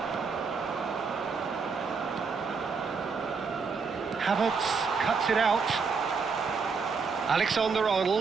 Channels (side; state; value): left; quieter; 5.1 dB